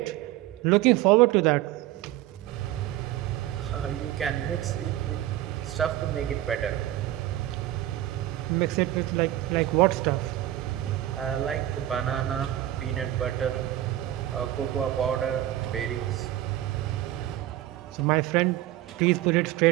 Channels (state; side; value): quieter; left; 14.1 dB